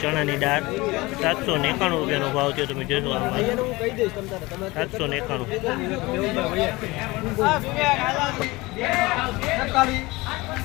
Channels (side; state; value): right; quieter; 21.9 dB